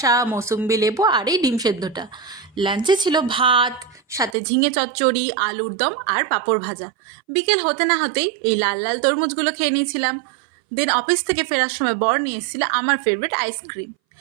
মৌসুম্বি লেবু আর এই ডিম সেদ্ধটা। লাঞ্চে ছিল ভাত, সাথে ঝিঙে চচ্চড়ি, আলুর দম আর পাঁপড় ভাজা। বিকেল হতে না হতেই এই লাল লাল তরমুজগুলো খেয়ে নিয়েছিলাম। দেন অফিস থেকে ফেরার সময় বর নিয়ে এসেছিল আমার ফেভারিট আইসক্রিম।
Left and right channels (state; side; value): drops out; left; at 4.4 s